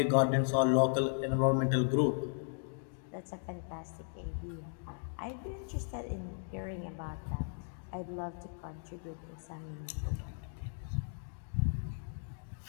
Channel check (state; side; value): silent; right; digital silence